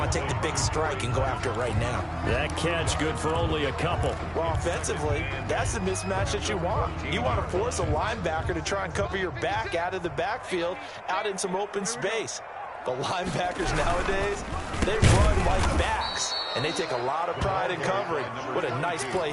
to take the big strike and go after it right now? That catch good for only a couple. Well, offensively, that's the mismatch that you want. You want to force a linebacker to try and cover your back out of the backfield, out in some open space. The linebackers nowadays, They run like backs, and they take a lot of pride in covering. What a nice play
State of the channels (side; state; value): both; identical; correlation 1.00